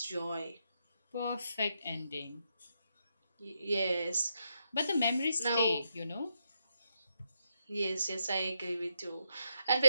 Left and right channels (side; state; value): both; inverted; correlation -0.81